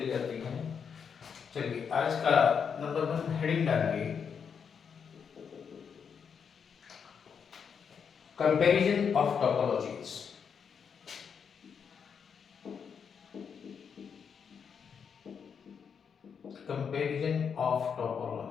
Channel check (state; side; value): quieter; right; 6.8 dB